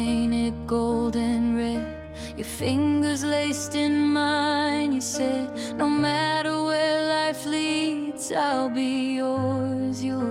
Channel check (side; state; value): both; identical; correlation 1.00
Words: gold and red, your fingers laced in mine. You said, no matter where life leads, I'll be yours,